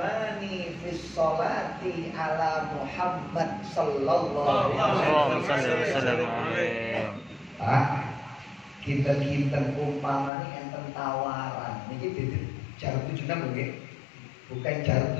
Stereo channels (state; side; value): drops out; right; at 10.3 s